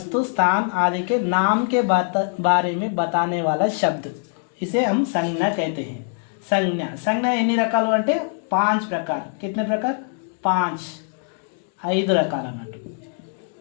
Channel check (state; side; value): silent; right; 57 dB below the other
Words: स्थान आदि के नाम के बारे में बताने वाला शब्द इसे हम संज्ञा कहते हैं. संज्ञा ఎన్ని రకాలు అంటే 5 प्रकार. कितने प्रकार? 5 రకాలు అన్నట్టు.